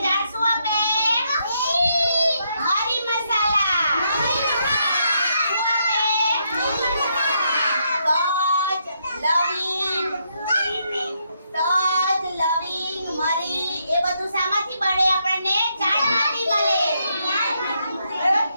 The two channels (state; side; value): inverted; both; correlation -0.77